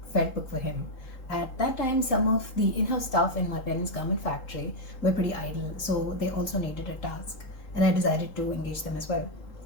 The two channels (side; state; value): right; late; 3.8 ms